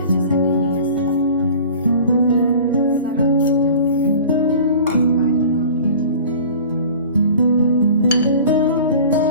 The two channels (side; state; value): both; inverted; correlation -0.42